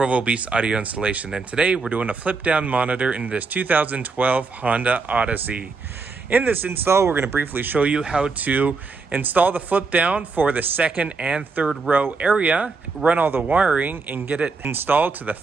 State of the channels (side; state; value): left; quieter; 4.3 dB